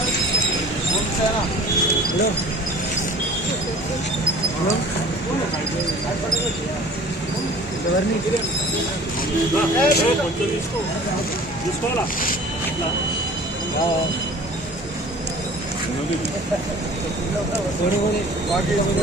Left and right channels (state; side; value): normal; both; correlation 0.45